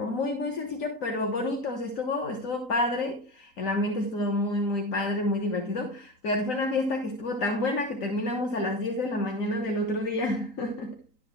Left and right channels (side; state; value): right; late; 3.9 ms